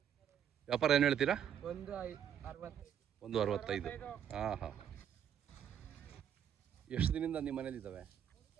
ವ್ಯಾಪಾರ ಏನು ಹೇಳ್ತೀರಾ? 165. ಹಾಂ ಹಾಂ. ಎಷ್ಟು ದಿನದಿಂದ ನಿಮ್ಮ ಮನೇಲಿದ್ದಾವೆ?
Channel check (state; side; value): quieter; left; 9.1 dB